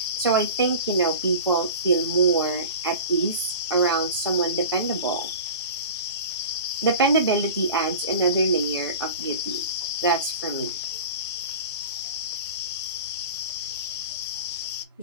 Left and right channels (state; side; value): inverted; both; correlation -0.34